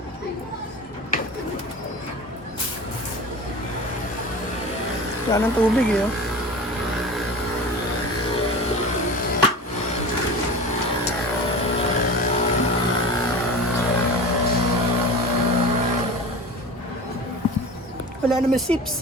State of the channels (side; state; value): both; normal; correlation 0.33